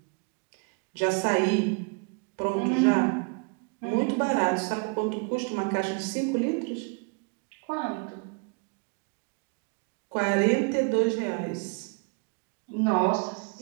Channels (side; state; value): left; quieter; 35.5 dB